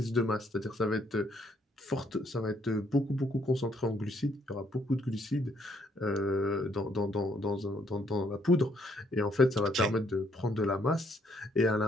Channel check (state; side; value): normal; both; correlation 0.69